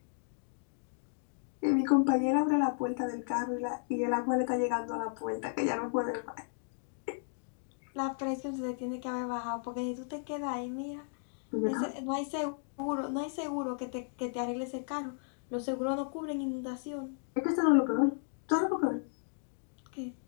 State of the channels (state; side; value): silent; right; digital silence